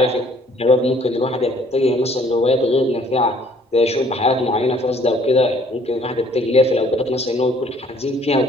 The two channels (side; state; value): both; normal; correlation 0.59